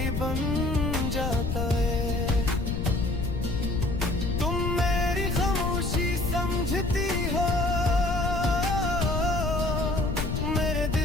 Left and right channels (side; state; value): left; noise; rumble, 1 dB below the sound